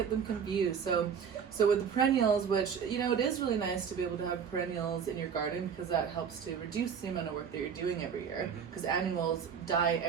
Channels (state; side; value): quieter; left; 7.1 dB